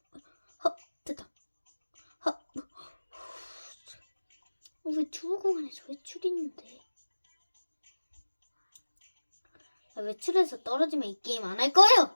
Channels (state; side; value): inverted; both; correlation -1.00